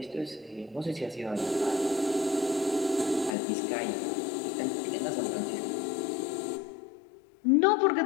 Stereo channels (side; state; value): right; drops out; at 3.3 s